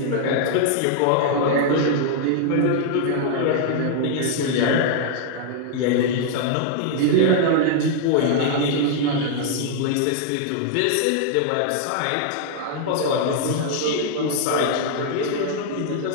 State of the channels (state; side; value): different; both; correlation -0.01